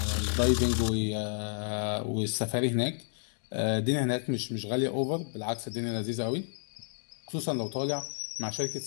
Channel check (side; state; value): right; silent; digital silence